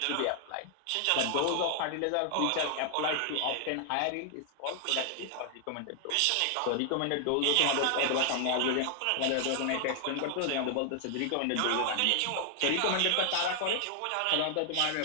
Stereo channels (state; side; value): different; both; correlation 0.00